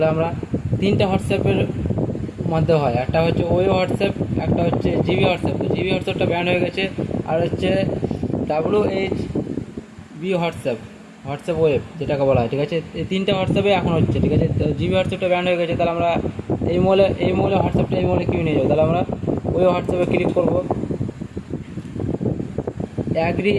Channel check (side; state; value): both; identical; correlation 1.00